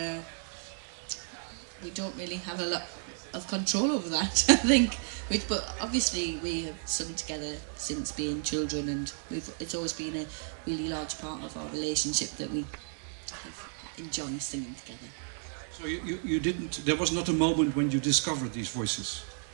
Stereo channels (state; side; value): silent; left; 56 dB below the other